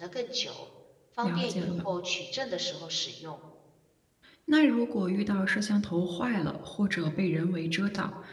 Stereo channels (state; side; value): identical; both; correlation 1.00